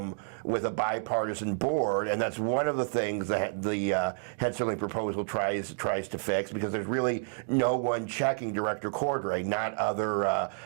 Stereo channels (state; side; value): silent; left; digital silence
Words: with a bipartisan board, and that's one of the things that the Hensarling proposal tries to fix, because there's really no one checking Director Cordray, not other